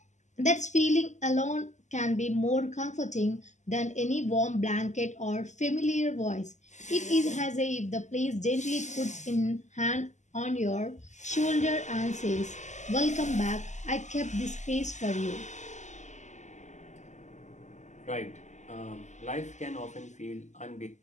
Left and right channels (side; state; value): right; late; 0.34 ms